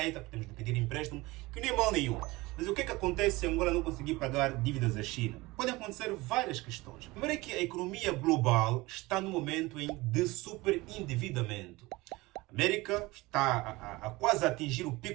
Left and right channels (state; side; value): quieter; left; 21.3 dB